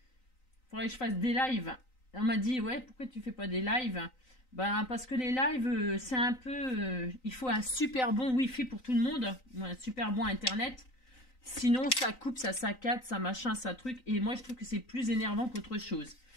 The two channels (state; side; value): late; right; 3.9 ms